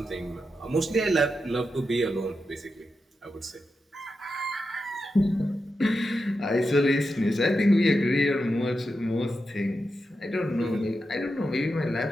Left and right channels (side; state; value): both; normal; correlation 0.88